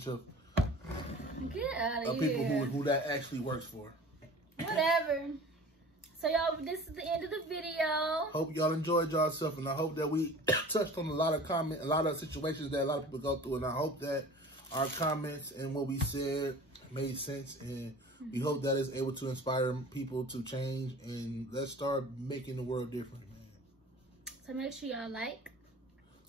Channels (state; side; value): normal; both; correlation 0.42